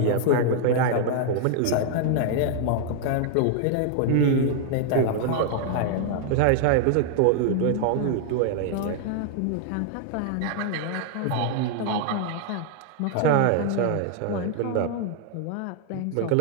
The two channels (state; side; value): different; both; correlation 0.00